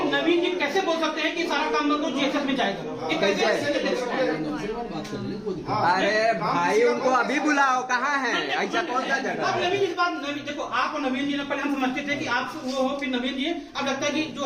नवीन जी कैसे बोल सकते हैं कि सारा काम बंद को जेएसएस में जाएगा? ये कैसे? अरे भाई उनको अभी बुलाओ, कहाँ है? ऐसा कौन सा जगह अब है? नवीन इस बात नवीन देखो आप और नवीन जी ने पहले हम समझते थे कि आप वो हो फिर नवीन जी अब लगता है कि जो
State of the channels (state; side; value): identical; both; correlation 1.00